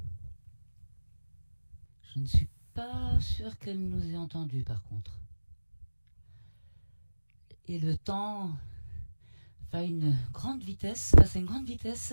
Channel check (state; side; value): inverted; both; correlation -1.00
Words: Je ne suis pas sûre qu'elle nous ait entendus, par contre. Et le temps passe à une grande vitesse.